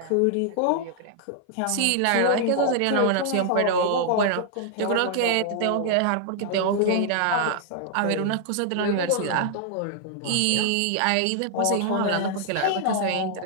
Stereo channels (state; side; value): different; both; correlation -0.01